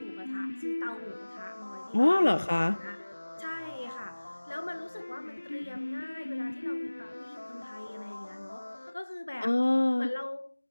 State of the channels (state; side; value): inverted; both; correlation -1.00